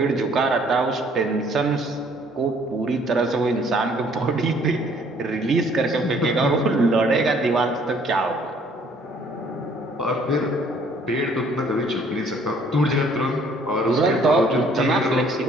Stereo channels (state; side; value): normal; both; correlation 0.60